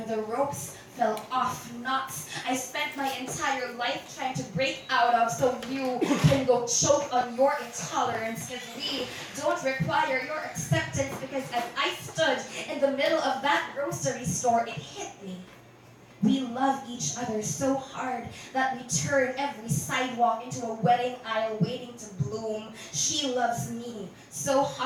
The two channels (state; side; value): identical; both; correlation 1.00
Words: the ropes fell off knots I spent my entire life trying to break out of, so you can go choke on your intolerance. Because we don't require your acceptance. Because as I stood in the middle of that grocery store, it hit me. We love each other so hard that we turn every sidewalk into a wedding aisle waiting to bloom. She loves me so